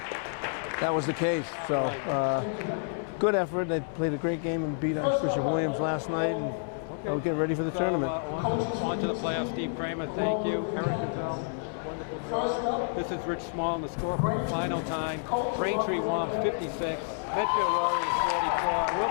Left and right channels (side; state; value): right; silent; digital silence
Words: was the case. So, good effort. They played a great game and beat Archbishop Williams last night. And we'll get ready for the tournament. On to the playoffs. Steve Kramer, thank you. Eric Gazelle, wonderful job. This is Rich Small on the score for the final time. Braintree Womps 56, Medfield Warriors 44. We'll